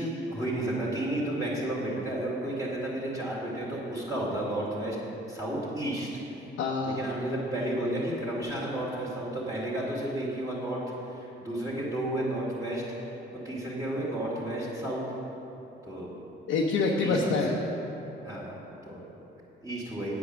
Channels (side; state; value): both; normal; correlation 0.51